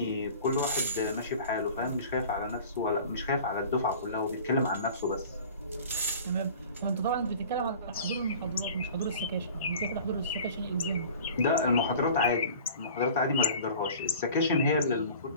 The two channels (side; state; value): both; inverted; correlation -0.43